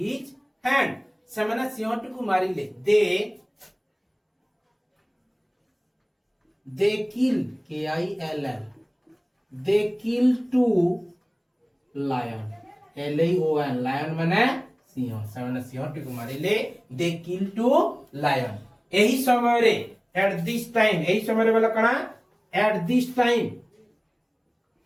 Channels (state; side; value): identical; both; correlation 1.00